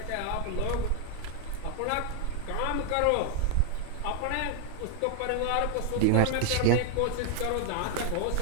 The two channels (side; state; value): both; different; correlation 0.00